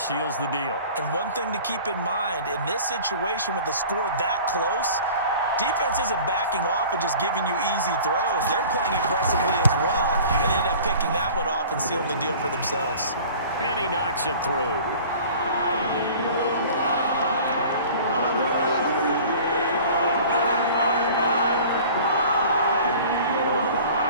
the deal. And one thing to keep in mind, in this situation with the score that close, defense isn't backing off and just giving you easy throws. They're playing aggressively as well, and they end up picking that one off and sealing the deal for themselves. And he knocks it through.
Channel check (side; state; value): both; inverted; correlation -0.44